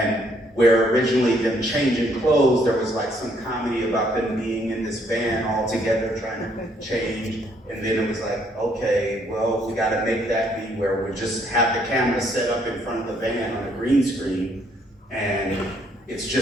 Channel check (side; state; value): both; normal; correlation 0.68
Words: where originally them changing clothes, there was some comedy about them being in this van all together trying to change. And then it was like, okay, well, we gotta make that be where we just have the camera set up in front of the van on a green screen. And it's